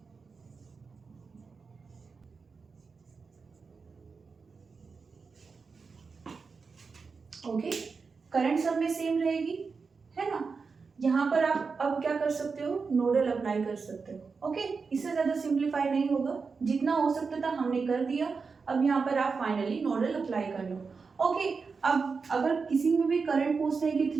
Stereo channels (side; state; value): left; quieter; 4.9 dB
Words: ओके। करंट सब में सेम रहेगी, है ना। यहाँ पर आप अब क्या कर सकते हो, नोडल अप्लाई कर सकते हो, ओके। इससे ज्यादा सिंप्लीफाई नहीं होगा, जितना हो सकता था हमने कर दिया। अब यहाँ पर आप फाइनली नोडल अप्लाई कर लो, ओके। अब अगर किसी में भी करंट पूछते हैं कि